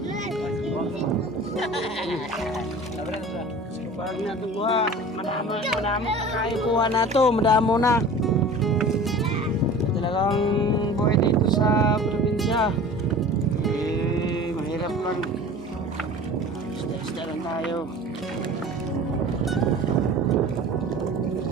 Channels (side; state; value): both; normal; correlation 0.40